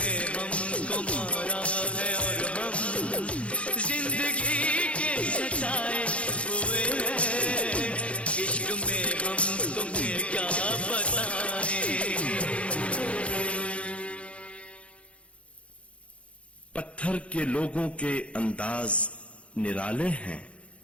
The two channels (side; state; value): right; late; 0.061 ms